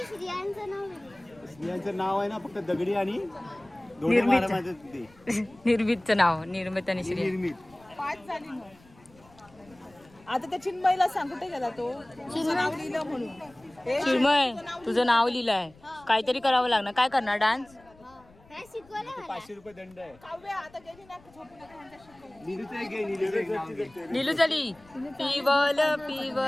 श्रियांचं नाव स्त्रियांचं नाव आहे ना फक्त दगडी आणि निर्मितचं नाव निर्मित आणि श्री. निर्मित. 5 झाली मग. आता त्या चिन्मयला सांग कुठे गेला तो नाव लिहिलं म्हणून. चिन्मय तुझं नाव लिहिलंय काहीतरी करावं लागणार. काय करणार डान्स? काय शिकवलं मला? 500 रुपये दंड आहे. काव्या आता गेली ना झोपून नीलू चली पिवल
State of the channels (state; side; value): noise; left; rumble, 27 dB below the sound